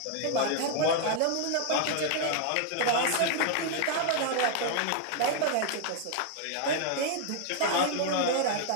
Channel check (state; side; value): different; both; correlation 0.00